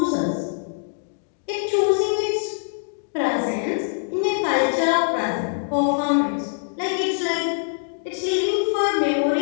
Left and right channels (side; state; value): right; silent; digital silence